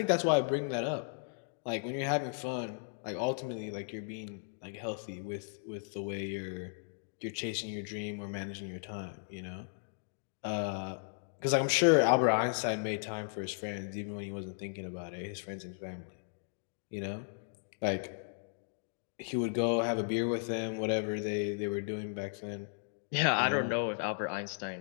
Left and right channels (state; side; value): silent; right; digital silence